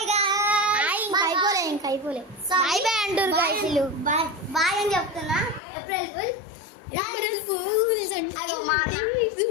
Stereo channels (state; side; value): drops out; right; at 5.6 s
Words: గాయ్స్. ఇంకా అయిపోలే బాయ్ బాయ్ అంటారు గాయ్స్. బాయ్ అని చెప్తున్నా. April fool. అదో మా